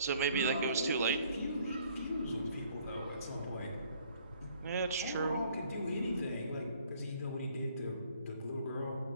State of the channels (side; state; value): both; inverted; correlation -0.60